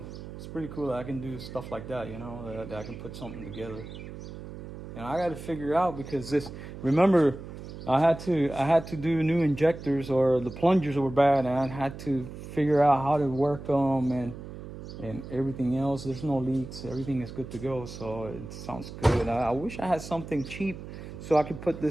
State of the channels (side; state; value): right; noise; hum, 12 dB below the sound